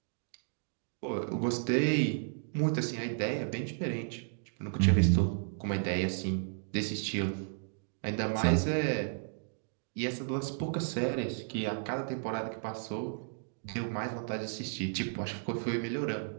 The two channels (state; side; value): silent; left; digital silence